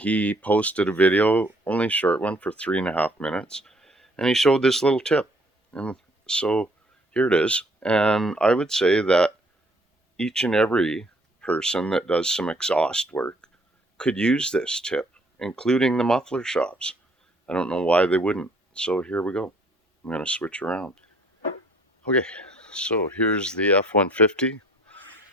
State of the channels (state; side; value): normal; both; correlation 0.60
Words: posted a video, only a short one for 3.5 minutes, and he showed this little tip, and so here it is. And I would say that each and every person that does some exhaust work could use this tip, including the muffler shops. I don't know why they wouldn't. So here we go. I'm going to switch around. Okay, so here's the F-150,